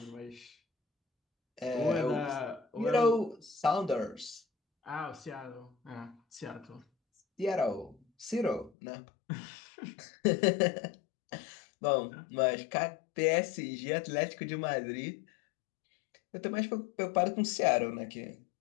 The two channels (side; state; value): right; drops out; at 8.7 s